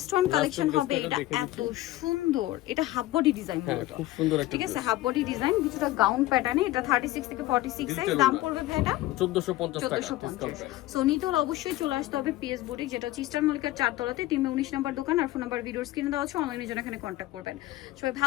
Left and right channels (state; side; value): quieter; right; 16.5 dB